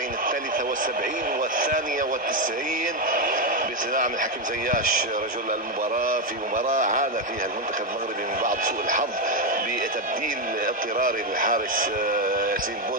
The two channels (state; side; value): normal; both; correlation 0.07